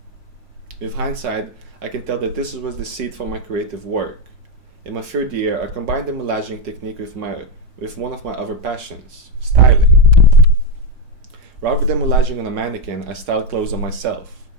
With hindsight, I can tell that this was the seed for my creative work. In my third year, I combined the moulaging technique with one of my other passions, styling. Rather than moulaging on a mannequin, I styled clothes on myself.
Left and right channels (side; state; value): left; late; 5.5 ms